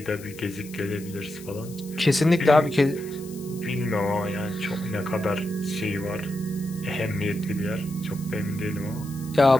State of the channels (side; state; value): left; noise; hiss, 19 dB below the sound